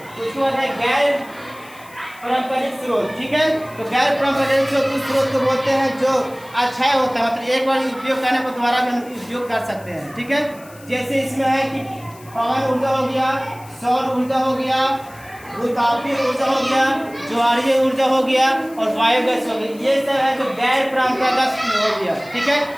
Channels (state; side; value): noise; left; hiss, 23 dB below the sound